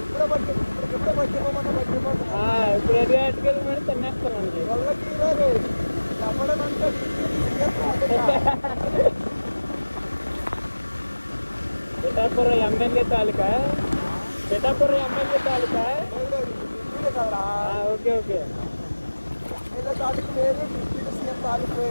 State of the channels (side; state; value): both; inverted; correlation -1.00